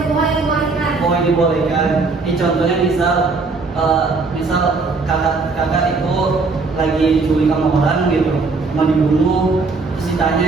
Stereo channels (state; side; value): quieter; left; 4.1 dB